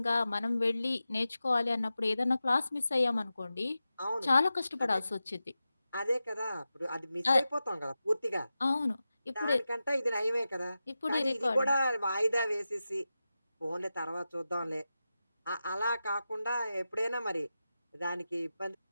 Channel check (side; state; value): both; inverted; correlation -0.93